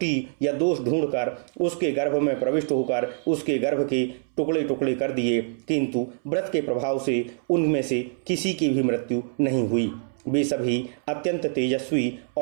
या दोष ढूंढकर उसके गर्भ में प्रविष्ट होकर उसके गर्भ के टुकड़े टुकड़े कर दिए, किंतु व्रत के प्रभाव से उनमें से किसी की भी मृत्यु नहीं हुई। वे सभी अत्यंत तेजस्वी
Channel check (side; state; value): left; silent; 62 dB below the other